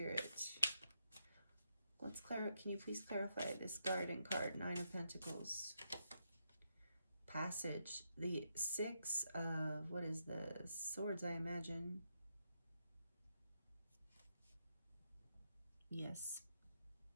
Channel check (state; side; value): inverted; both; correlation -0.81